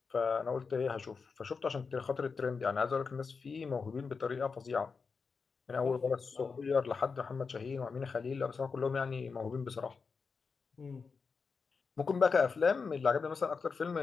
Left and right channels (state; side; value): quieter; right; 5.1 dB